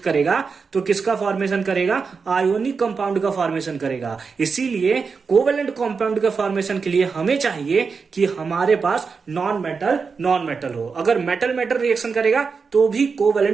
तो किसका फॉर्मेशन करेगा? आयोनिक कंपाउंड का फॉर्मेशन करेगा। इसीलिए कोवेलेंट कंपाउंड के फॉर्मेशन के लिए हमें चाहिए कि हमारे पास नॉन मेटल हो। अगर मेटल रिएक्शन करेगा तो भी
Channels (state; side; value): quieter; left; 5.2 dB